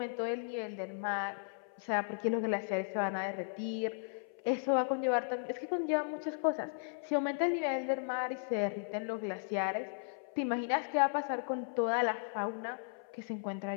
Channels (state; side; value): silent; right; 54 dB below the other